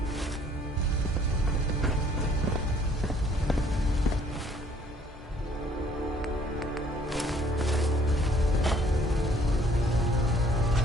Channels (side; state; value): both; normal; correlation 0.60